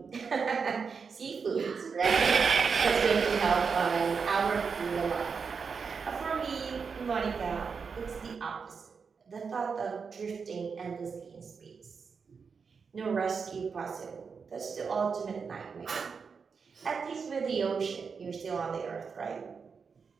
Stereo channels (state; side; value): quieter; left; 5.6 dB